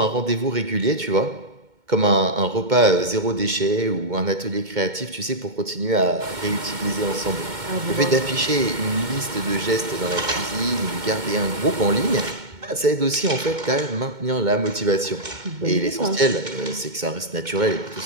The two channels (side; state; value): left; late; 2.2 ms